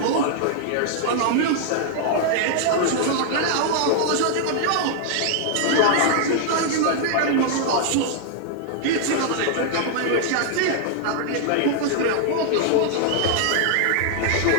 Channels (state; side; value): different; both; correlation 0.00